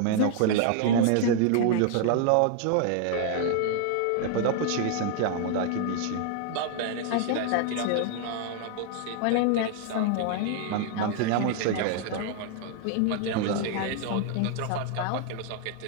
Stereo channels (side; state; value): both; different; correlation 0.00